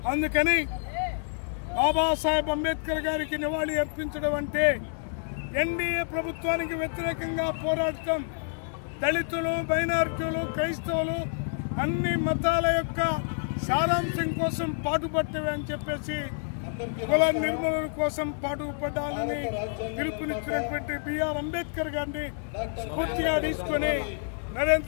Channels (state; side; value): silent; right; digital silence